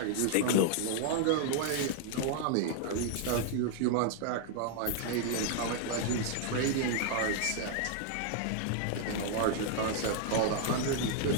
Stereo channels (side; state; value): both; different; correlation 0.00